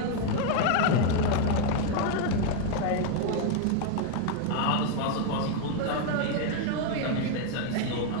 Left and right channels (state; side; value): different; both; correlation 0.00